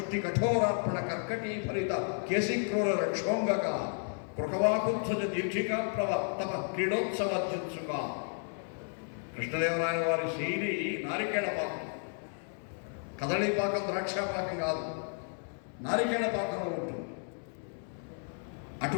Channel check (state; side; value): silent; right; 56 dB below the other